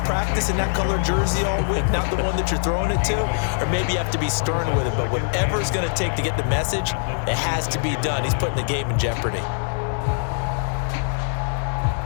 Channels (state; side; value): silent; right; digital silence